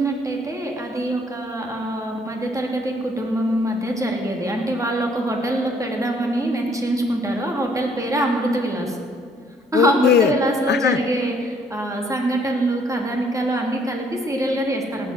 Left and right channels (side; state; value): both; normal; correlation 0.64